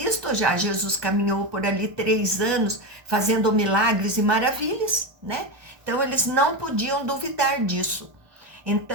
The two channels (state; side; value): late; left; 1.2 ms